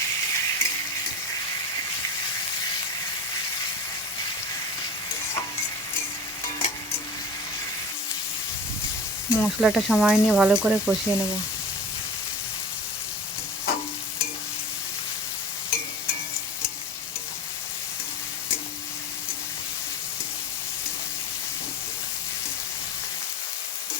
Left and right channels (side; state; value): both; normal; correlation 0.35